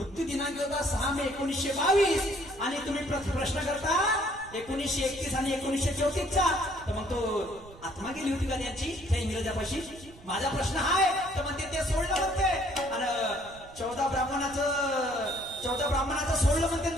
दिनांक होता 6 मे 1922 आणि तुम्ही प्रश्न करता 1931 आणि 1934चा. तर मग तो आत्मा गेली होती का त्यांची त्या इंग्रजापाशी. माझा प्रश्न आहे तर म्हणते ते सोडलं म्हणते आणि 14 ब्राह्मणाचं सोडलं म्हणते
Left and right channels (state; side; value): noise; right; rumble, 20 dB below the sound